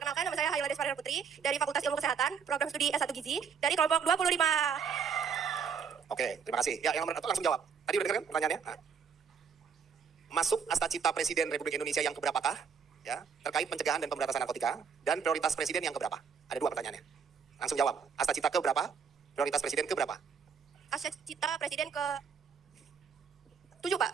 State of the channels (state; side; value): quieter; left; 6.4 dB